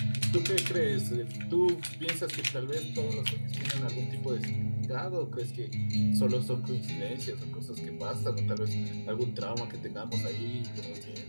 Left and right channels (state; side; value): inverted; both; correlation -1.00